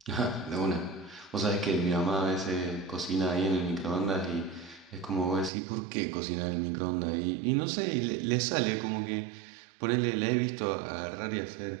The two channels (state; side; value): drops out; left; at 5.5 s